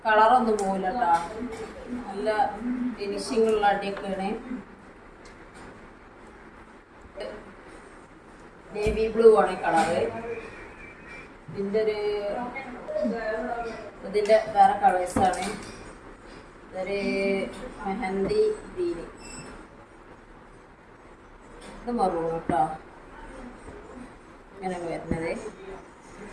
കളറൊന്നും പോകില്ല കേട്ടോ, നല്ല ഫിനിഷിംഗ് ഉള്ള അടിയൊക്കെയാണ്. നേവി ബ്ലൂ ആണ് കളറ്. ഇതിൻ്റെ വേറെ കളേഴ്സാണ്. ഇതൊരു മെഹന്തി ഗ്രീന്, ഇത് മറൂൺ കേട്ടോ, ഇങ്ങനെ വരുന്നത്.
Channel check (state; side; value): identical; both; correlation 1.00